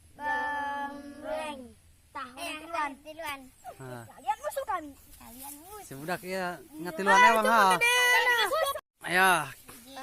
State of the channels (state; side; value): identical; both; correlation 1.00